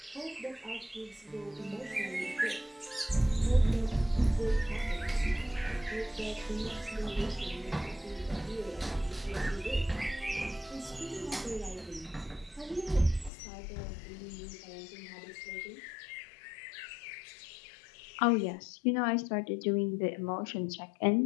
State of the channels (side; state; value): right; drops out; at 13.3 s